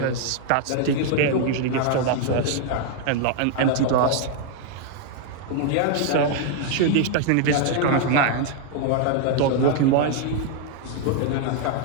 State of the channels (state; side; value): different; both; correlation 0.00